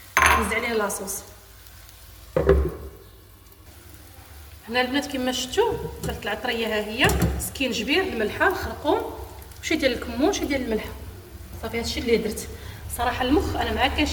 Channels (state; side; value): identical; both; correlation 1.00